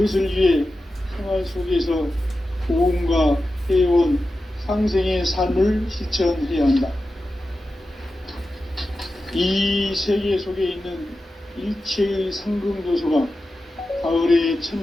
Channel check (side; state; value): both; normal; correlation 0.92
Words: 위해 생활 속에서 보험과 회원, 상생의 삶을 실천해야 한다. 이 세계 속에 있는 일체의 상금 요소가 가을의